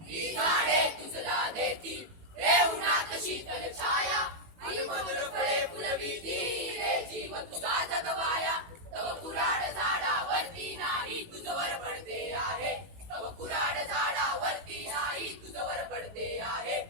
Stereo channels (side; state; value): left; late; 18 ms